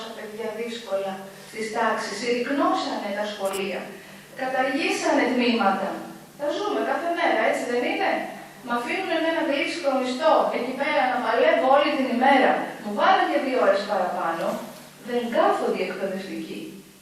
παιδιά δύσκολα στις τάξεις, συρρυκνώσανε τα σχολεία, καταργήσανε τμήματα. Τα ζούμε κάθε μέρα, έτσι δεν είναι? Μ' αφήνουν εμένα γλύψικο μισθό εκεί πέρα να παλεύω όλη την ημέρα. Μου βάλουν και 2 ώρες παραπάνω. Δεν κάθονται οι εκπαιδευτικοί.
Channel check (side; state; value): both; identical; correlation 1.00